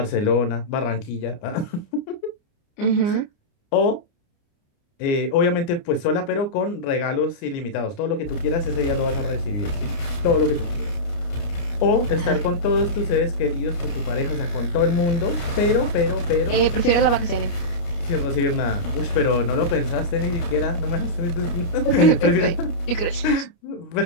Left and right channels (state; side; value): late; right; 29 ms